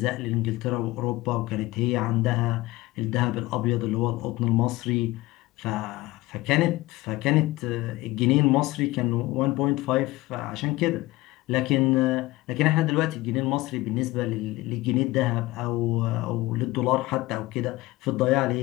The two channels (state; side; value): quieter; right; 19.4 dB